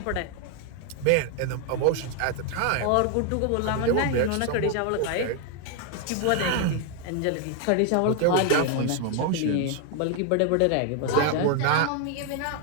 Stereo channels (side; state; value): both; different; correlation 0.00